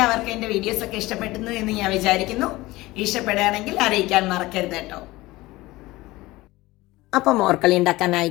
എൻ്റെ വീഡിയോസ് ഒക്കെ ഇഷ്ടപ്പെടുന്നു എന്ന് ഞാൻ വിചാരിക്കുന്നു. ഇഷ്ടപ്പെടുകയാണെങ്കിൽ അറിയിക്കാൻ മറക്കരുത് കേട്ടോ. അപ്പം മോർക്കളി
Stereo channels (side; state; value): right; quieter; 19.5 dB